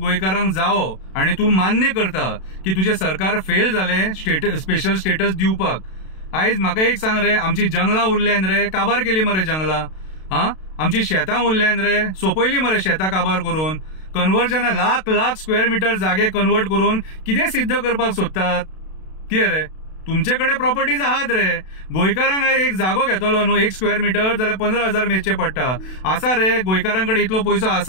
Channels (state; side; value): late; right; 32 ms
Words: जावो आनी तूं मान्य करता की तुजें सरकार फेल जालें स्पेशल स्टेटस दिवपाक. आयज म्हाका एक सांग रे, आमची जंगलां उरल्यान रे, काबार केली मरे जंगलां. आमची शेतां उरल्यान रे, सोंपयली मरे शेतां काबार करून. कन्वर्जना लाख लाख स्क्वेअर मिटर जागे कन्वर्ट करून कितें सिद्ध करपाक सोदतात? कितें रे, तुमचे कडेन प्रॉपर्टीज आहात रे. गोंयकारांक एक जागो घेतलो न्हू 1 स्क्वेअर मिटर जाल्यार 15,000 मेजचे पडटा. आसा रे गोंयकारांकडे इतलो पयसो